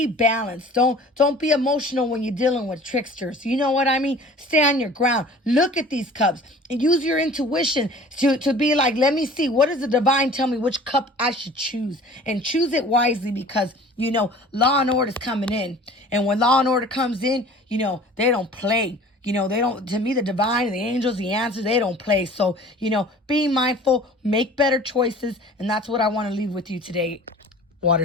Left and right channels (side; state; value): both; normal; correlation 0.46